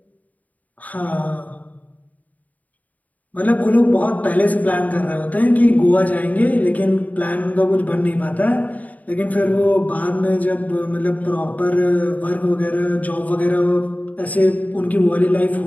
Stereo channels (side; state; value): right; late; 0.075 ms